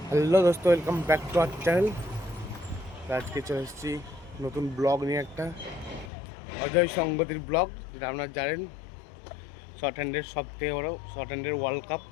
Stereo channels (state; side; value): drops out; right; at 6.1 s